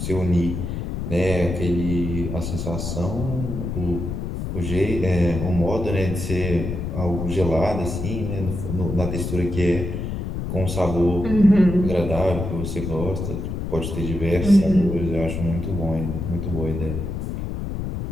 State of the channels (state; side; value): noise; left; rumble, 4 dB below the sound